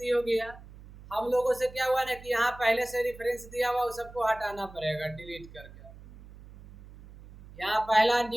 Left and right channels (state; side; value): noise; right; hum, 18 dB below the sound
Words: हो गया। हम लोगों से क्या हुआ ना कि यहाँ पहले से रेफरेंस दिया हुआ वो सबको हटाना पड़ेगा डिलीट करके। यहाँ पहला